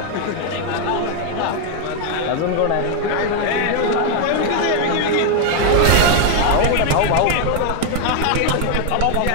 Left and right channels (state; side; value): different; both; correlation 0.00